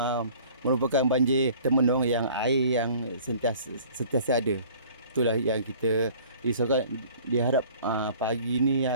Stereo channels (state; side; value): inverted; both; correlation -0.50